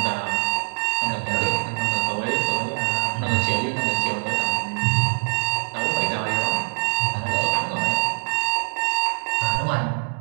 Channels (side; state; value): left; silent; 63 dB below the other